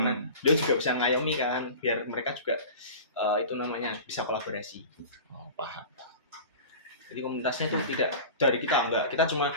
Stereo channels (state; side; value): inverted; both; correlation -0.36